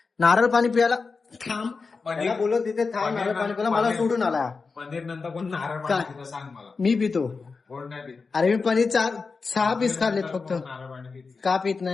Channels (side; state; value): right; quieter; 4.6 dB